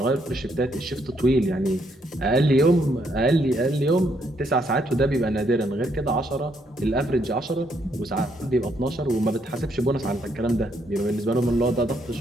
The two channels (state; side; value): normal; both; correlation 0.73